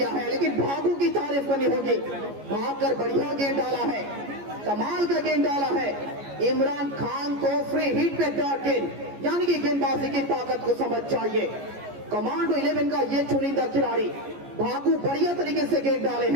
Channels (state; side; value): late; left; 14 ms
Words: है, लेकिन भागू की तारीफ करनी होगी। भागकर बढ़िया गेंद डाला है, कमाल का गेंद डाला है। इमरान खान को फ्री हिट पे डॉट गेंद, यानी कि गेंदबाजी की ताकत को समझ चाहिए। कमांडो 11 का ये चुनिंदा खिलाड़ी भागू बढ़िया तरीके से गेंद डाले